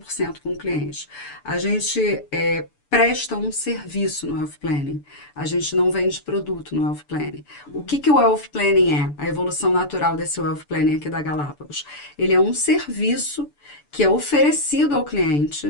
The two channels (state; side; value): late; right; 6.9 ms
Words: com o cliente. A gente presta um serviço no Wealth Planning. A gente não vende produto no Wealth Planning. O que que o Wealth Planning é? A evolução natural desse Wealth Planning aqui da Galápagos. Ele é um serviço que é oferecido ao